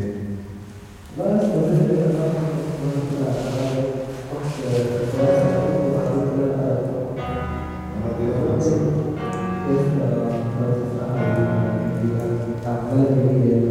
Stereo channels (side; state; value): both; identical; correlation 1.00